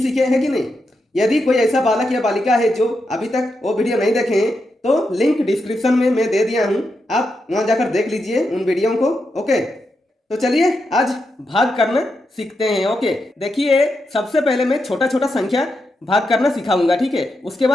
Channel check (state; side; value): normal; both; correlation 0.85